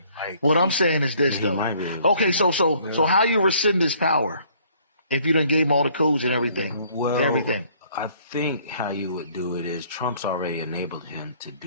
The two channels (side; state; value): both; inverted; correlation -0.61